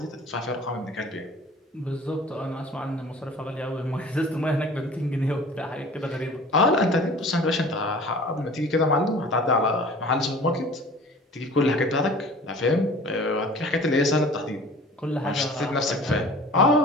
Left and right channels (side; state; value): both; normal; correlation 0.45